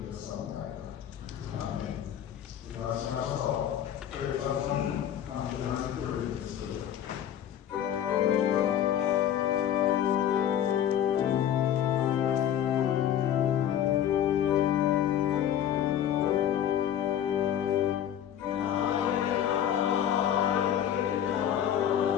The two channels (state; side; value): quieter; right; 10.2 dB